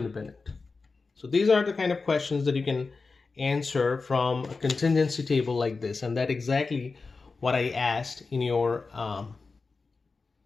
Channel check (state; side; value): quieter; right; 4.2 dB